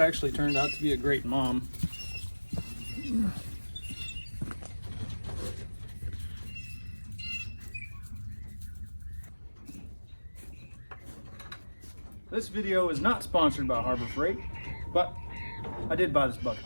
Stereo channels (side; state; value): both; inverted; correlation -1.00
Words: turned out to be a great mom. This video is not sponsored by Harbor Freight, but I did buy this bucket